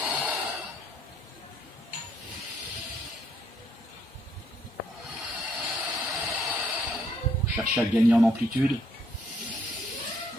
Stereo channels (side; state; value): both; normal; correlation 0.69